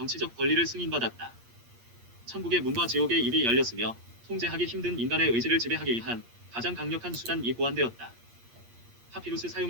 권리를 승인받았다. 천국의 문과 지옥의 입이 열렸으며 통제하기 힘든 인간의 의지를 지배하기 위한 가장 강력한 수단이 고안되었다. 파피루스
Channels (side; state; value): left; late; 8.5 ms